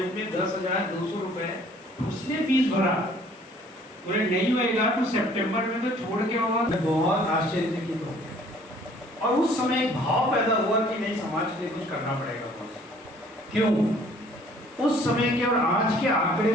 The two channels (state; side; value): normal; both; correlation 0.56